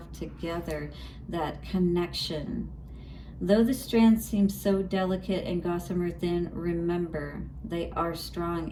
together, that connection. Though the strands seem so delicate and gossamer thin, remember, they are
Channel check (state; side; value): identical; both; correlation 1.00